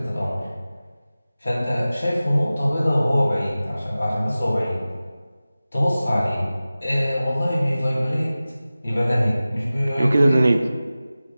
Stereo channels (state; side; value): inverted; both; correlation -0.96